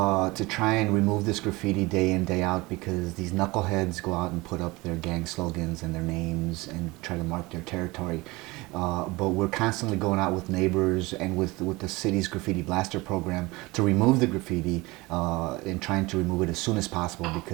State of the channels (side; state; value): left; quieter; 22.6 dB